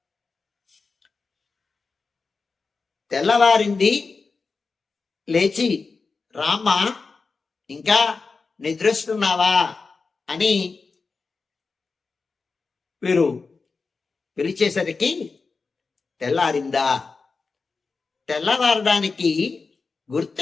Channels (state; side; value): quieter; right; 4.4 dB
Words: తెల్లవారింది, లేచి రామ ఇంకా నిద్రిస్తున్నావా అని వీరు పిలిచేసరికి తెల్లారిందా, తెల్లవారడానికి